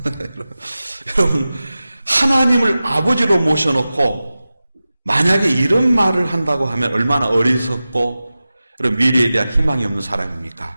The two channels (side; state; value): both; inverted; correlation -0.95